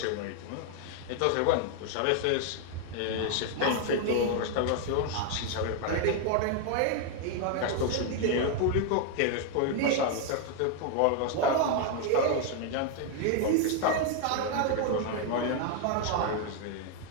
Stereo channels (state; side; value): different; both; correlation 0.01